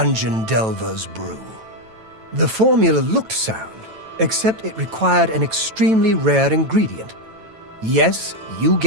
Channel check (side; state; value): left; late; 9.1 ms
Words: delver's brew. The formula looked sound, except it required an extremely rare ingredient. Yes, you